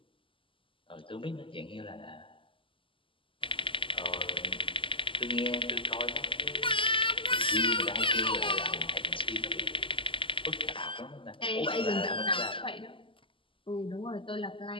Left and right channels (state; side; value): late; right; 0.25 ms